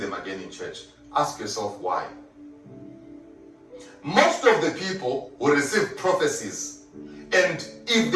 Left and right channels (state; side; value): identical; both; correlation 1.00